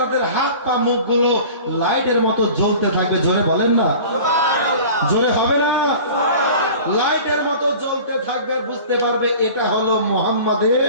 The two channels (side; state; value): both; inverted; correlation -0.41